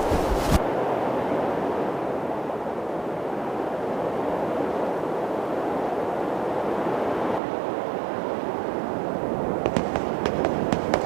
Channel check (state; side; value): drops out; left; at 7.4 s